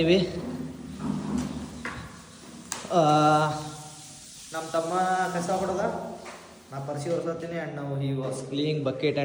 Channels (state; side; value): identical; both; correlation 1.00